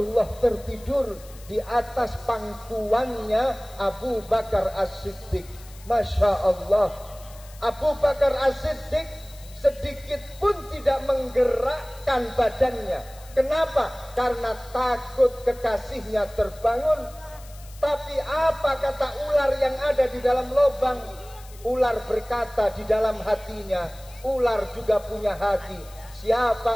tertidur di atas pangkuannya Abu Bakar As-Siddiq. Masya Allah. Abu Bakar As-Siddiq sedikit pun tidak menggerakkan badannya. Kenapa? Karena takut kekasihnya terbangun. Tapi apa kata ular yang ada di dalam lubang? Ular berkata di dalam hatinya, ular juga punya hati.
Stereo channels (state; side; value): noise; left; hiss, 22 dB below the sound